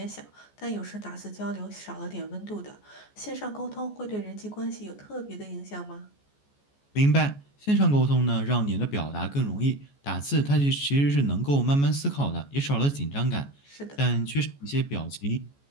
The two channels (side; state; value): right; late; 14 ms